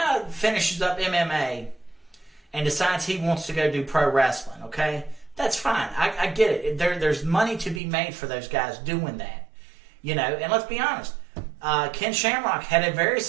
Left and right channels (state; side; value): drops out; left; at 7.8 s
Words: finishes up MMA and decides he wants to go do pro wrestling, okay, that's fine. I get it. There's money to be made for those guys doing that. You know, and let's be honest, Ken Shamrock had a very